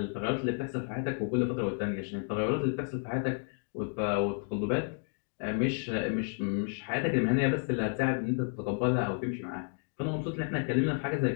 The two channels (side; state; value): right; silent; 57 dB below the other